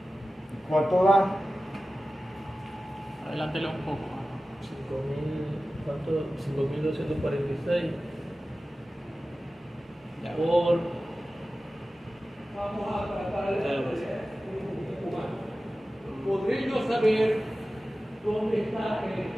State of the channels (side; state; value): both; normal; correlation 0.95